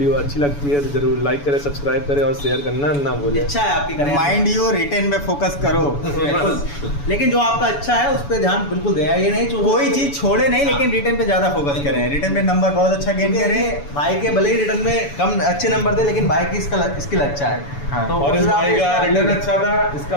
अच्छी लगती है तो जरूर लाइक करें, सब्सक्राइब करें और शेयर करना ना भूलें। इच्छा है आपकी करें, माइंड यू रिटेन पे फोकस करो, बिल्कुल। लेकिन जो आपका अच्छा है उस पर ध्यान बिल्कुल दें, ये नहीं जो कोई चीज छोड़े नहीं, लेकिन रिटेन पे ज्यादा फोकस करें, रिटेन पे नंबर बहुत अच्छा गेन करें। भाई के भले ही रिटर्न में कम अच्छे नंबर थे, लेकिन भाई की स्किल अच्छा है। हाँ। तो और इस उससे भाई आप का इसका- रिटर्न अच्छा था, इसका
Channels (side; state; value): right; late; 7.0 ms